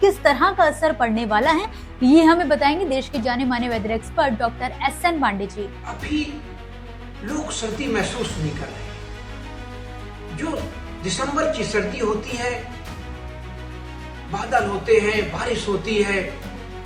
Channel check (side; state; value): both; identical; correlation 1.00